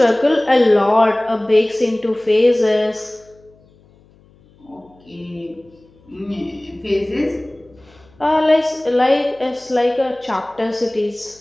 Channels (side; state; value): left; noise; hum, 29 dB below the sound